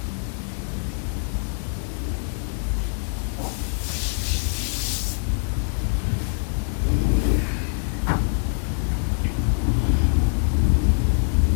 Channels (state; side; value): silent; right; digital silence